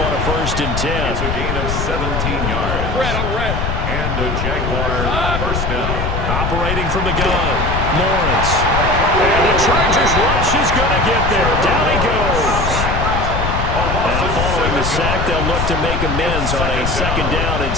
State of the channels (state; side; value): noise; left; rumble, 2 dB below the sound